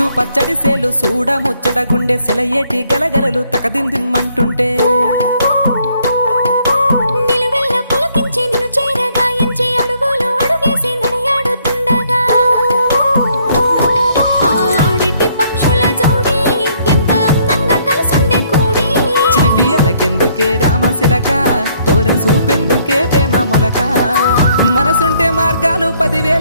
ముద్దు పచ్చడి సేలు సూడ ముచ్చట గుండె సెలయేటి గలగలలు తకదిందిమ్మంటుంటే నిలువెల్ల పులకించి నిన్ను చేరగాయించి అడుగులు అడుగేసి నడియాడుతుండగా ఆడెట్టి పక్షుల జోడి ఎంత అందంగా కలుసుండే కూడి చిలిపి అలకెందుకే రామశిలక తోర సూపెందుకే ప్రేమ మొలక మనసుంటే మార్గాలు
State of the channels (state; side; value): inverted; both; correlation -0.67